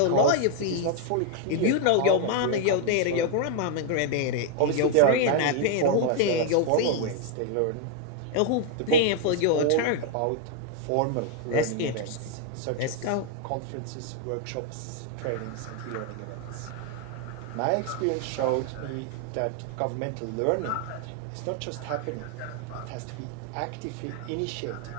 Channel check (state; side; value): different; both; correlation 0.00